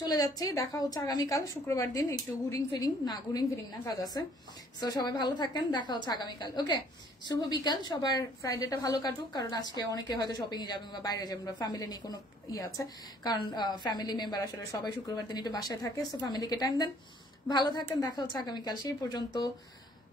চলে যাচ্ছে, দেখা হচ্ছে আগামীকাল শুক্রবার দিন। একটু ঘুরিং ফিরিং না, কাজ আছে। সো সবাই ভালো থাকেন, দেখা হচ্ছে আগামীকাল। ওকে, শুভ বিকাল সবার। ফ্রাইডেটা ভালো কাটুক, কারণ আজকে অনেকে হয়তো শপিং এ যাবেন বা বাইরে যাবেন বা ফ্যামিলি নিয়ে কোনো আছে, কারণ ফ্যামিলি মেম্বার আসলে সবাই শুক্রবার দিন একটু বাসায় থাকে। সো ফ্যামিলিকে টাইম দেন, ভালো থাকেন, দেখা হচ্ছে আগামীকাল। সেই পর্যন্ত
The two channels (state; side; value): normal; both; correlation 0.60